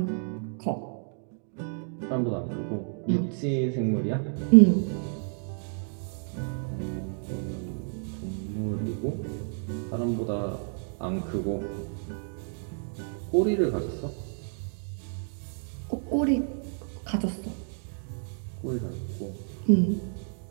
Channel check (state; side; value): silent; left; 58 dB below the other